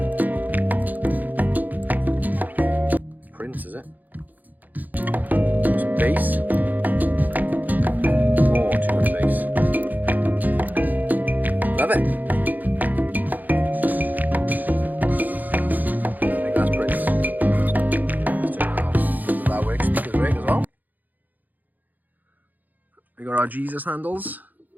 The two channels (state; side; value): late; left; 0.083 ms